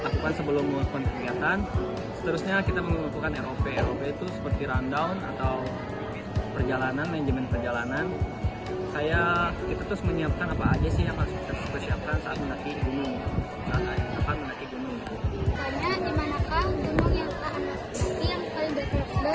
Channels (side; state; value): both; identical; correlation 1.00